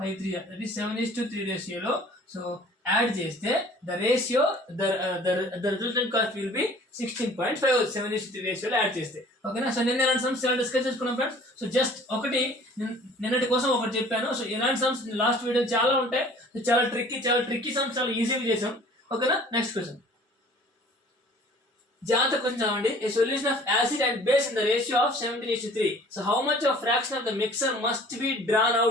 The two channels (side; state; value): both; normal; correlation 0.50